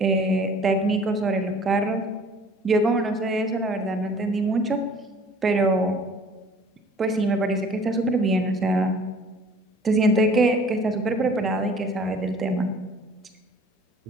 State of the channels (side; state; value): both; normal; correlation 0.51